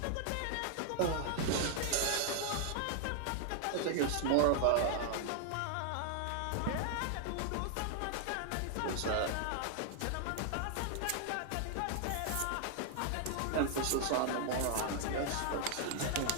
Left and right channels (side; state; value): both; different; correlation 0.00